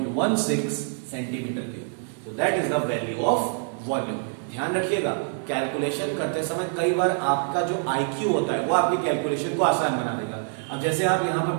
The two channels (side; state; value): left; silent; 61 dB below the other